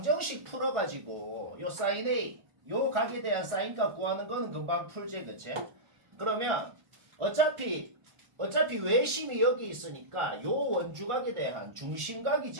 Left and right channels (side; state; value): left; late; 1.4 ms